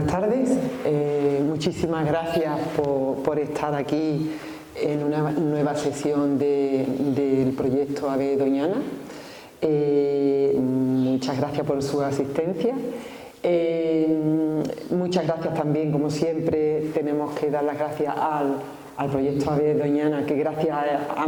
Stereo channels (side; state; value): both; identical; correlation 1.00